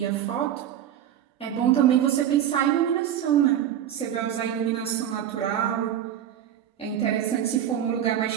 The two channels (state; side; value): quieter; left; 10.3 dB